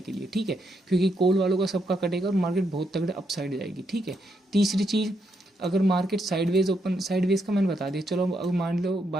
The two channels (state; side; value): normal; both; correlation 0.79